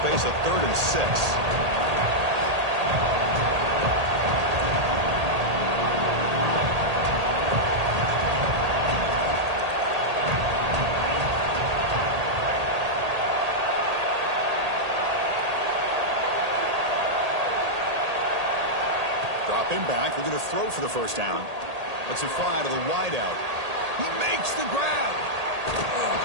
face a 3rd and 6. Him back. We're going to throw for the 1st down. That's a fly to the wideout. He makes the grab.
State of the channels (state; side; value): late; left; 1.8 ms